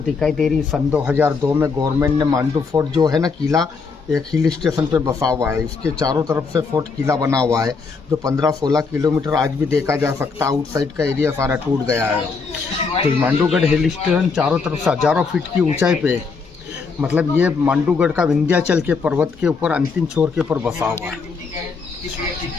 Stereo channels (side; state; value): right; quieter; 4.8 dB